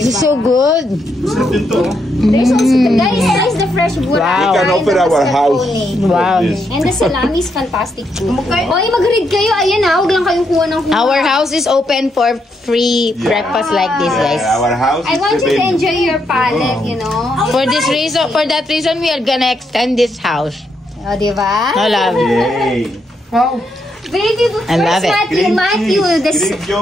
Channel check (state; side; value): normal; both; correlation 0.79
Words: is so good. There's also guys, the fresh burrata. Wow. We can open our house. Wow. And the salami is fantastic too. Oy, mag-read kayo. Ayan na, huwag lang kayong kuha ng kuha. Our house is open for free breakfast like this, guys. Our house I want you to enjoy your palate, you know. For that reason, we are gonna extend this house. O, diba? I love it. Wow. Baby, I love it. Matthew, this Greek